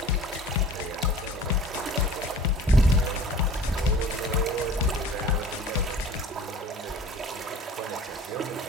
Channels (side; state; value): both; normal; correlation 0.45